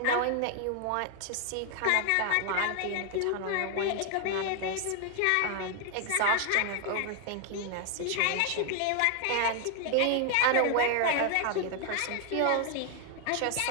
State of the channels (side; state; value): both; different; correlation 0.00